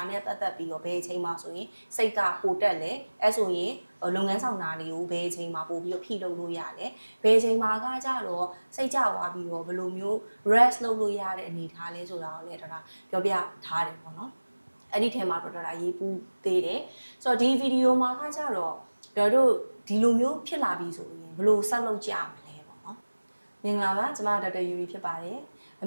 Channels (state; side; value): inverted; both; correlation -1.00